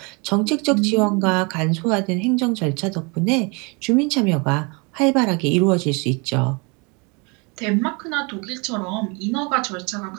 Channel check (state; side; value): quieter; left; 30.6 dB